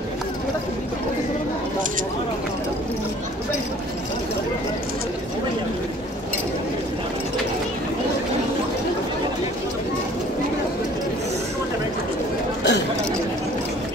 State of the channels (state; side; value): normal; both; correlation 0.52